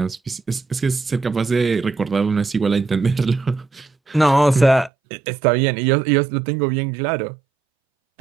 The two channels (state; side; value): drops out; left; at 4.9 s